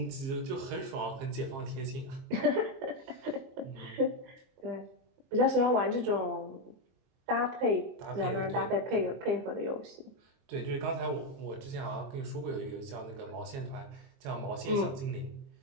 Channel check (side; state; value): left; late; 22 ms